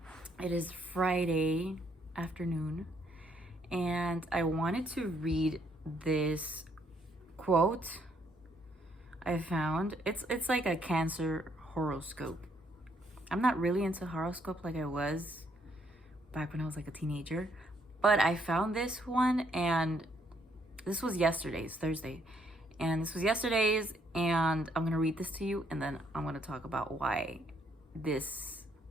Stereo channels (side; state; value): both; normal; correlation 0.71